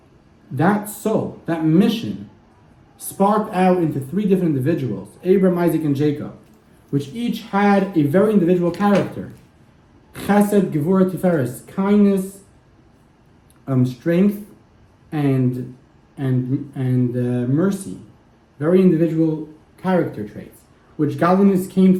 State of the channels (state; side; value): identical; both; correlation 1.00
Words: that soul, that mission, sparked out into 3 different individuals, Abraham, Isaac, and Jacob, which each had a very individual character. Chesed, Gevurah, Tiferes, kindness, strength, and mercy, very individual character traits, which godliness